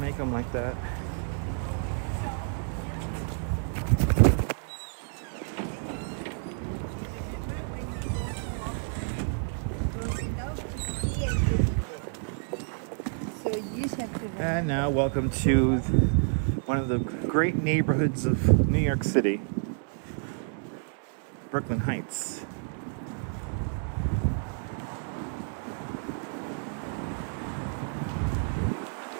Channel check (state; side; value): silent; left; 58 dB below the other